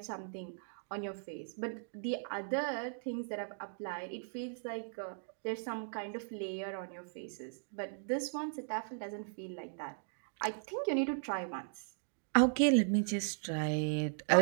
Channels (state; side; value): silent; left; digital silence